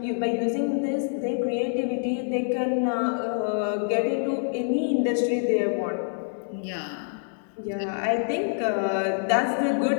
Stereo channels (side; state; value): right; silent; 61 dB below the other